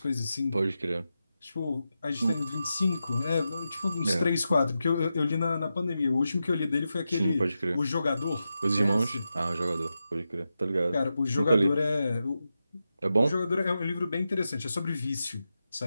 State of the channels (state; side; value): inverted; both; correlation -0.90